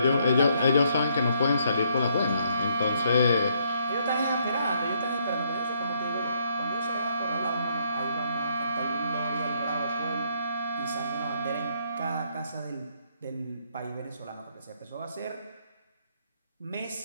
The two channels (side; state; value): both; inverted; correlation -0.70